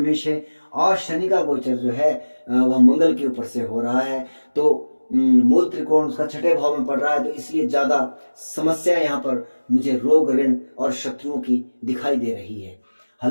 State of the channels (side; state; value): both; inverted; correlation -1.00